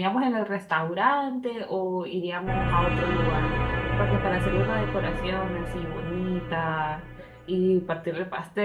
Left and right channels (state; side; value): identical; both; correlation 1.00